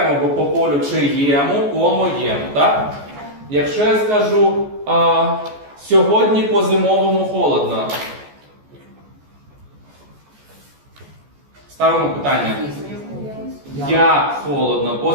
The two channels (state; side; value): late; left; 14 ms